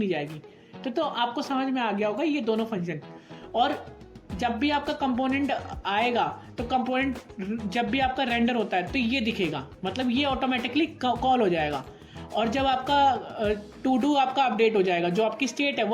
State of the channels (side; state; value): both; identical; correlation 1.00